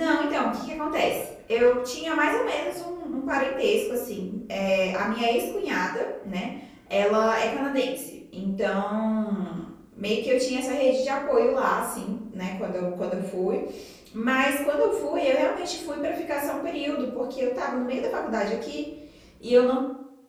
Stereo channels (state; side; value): identical; both; correlation 1.00